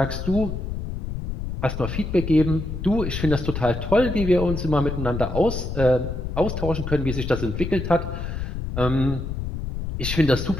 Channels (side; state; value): left; noise; rumble, 5 dB below the sound